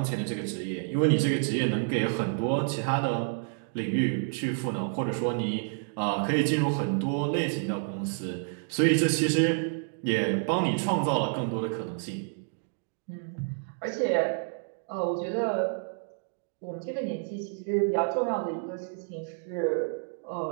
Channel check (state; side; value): silent; left; digital silence